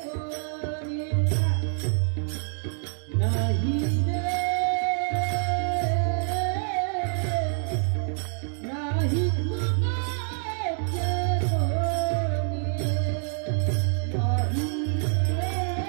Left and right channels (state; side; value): silent; left; 61 dB below the other